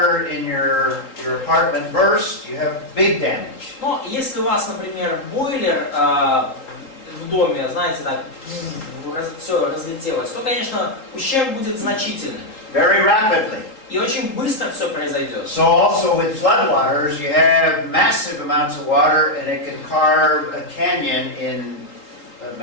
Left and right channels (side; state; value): right; late; 3.8 ms